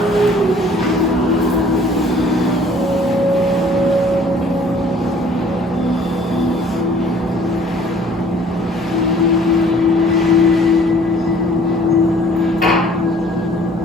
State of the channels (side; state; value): both; normal; correlation 0.55